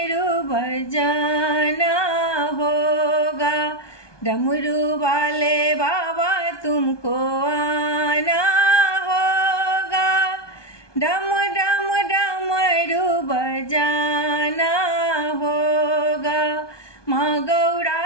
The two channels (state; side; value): late; right; 1.2 ms